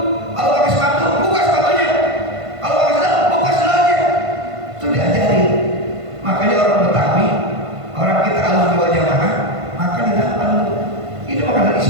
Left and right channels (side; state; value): left; late; 1.5 ms